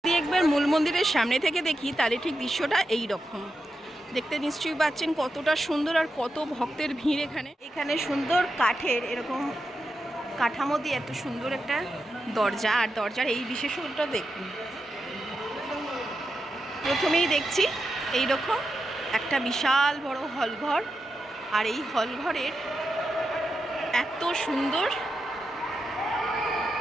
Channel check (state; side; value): normal; both; correlation 0.88